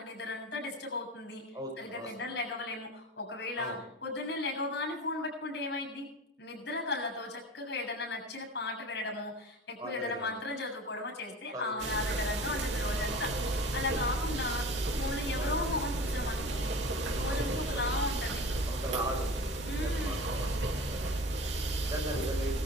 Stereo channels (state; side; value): normal; both; correlation 0.35